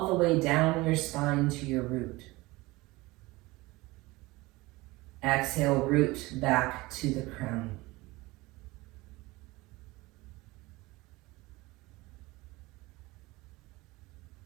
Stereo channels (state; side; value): quieter; left; 21.4 dB